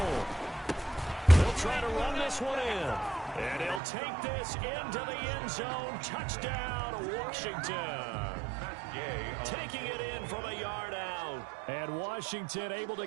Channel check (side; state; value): left; drops out; at 3.8 s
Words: They'll try to run this one in. And he'll take this into the end zone. Touchdown, Washington. Taking it in from a yard out. And Washington able